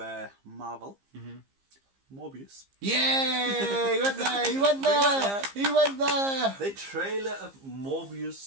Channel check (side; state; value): left; late; 15 ms